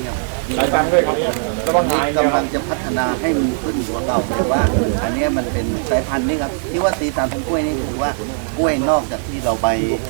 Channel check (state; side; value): silent; left; 66 dB below the other